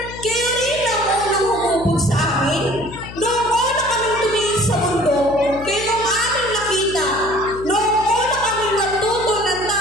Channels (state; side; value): noise; left; hum, 14 dB below the sound